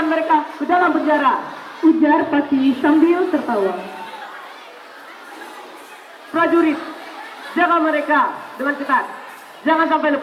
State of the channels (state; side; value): identical; both; correlation 1.00